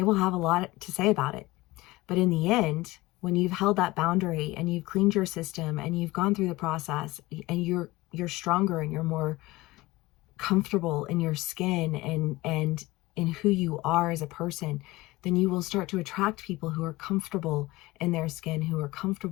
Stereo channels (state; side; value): quieter; right; 19.9 dB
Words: will have a lot to say about it. But in the end, when you've held that boundary and you've cleaned your system and you've gone through the process and you're stronger and you're more comfortable in your skin and in who you are as a person, then you will start to attract people who are comfortable in their skin, who are